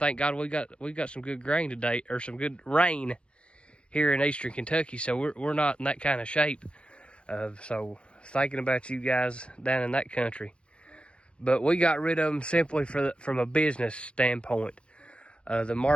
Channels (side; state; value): right; late; 0.058 ms